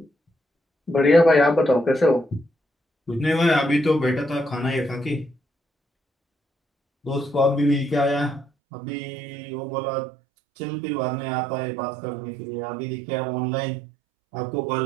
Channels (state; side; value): drops out; left; at 8.5 s